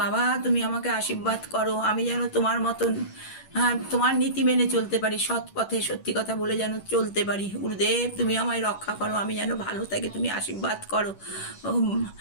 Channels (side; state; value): right; late; 10 ms